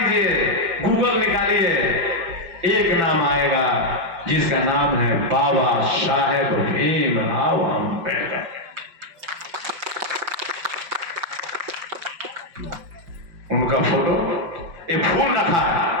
गूगल निकालिए, एक नाम आएगा जिसका नाम है बाबा साहेब भीमराव अम्बेडकर। उनका फोटो, ये फूल रखा है,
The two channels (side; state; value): left; late; 5.5 ms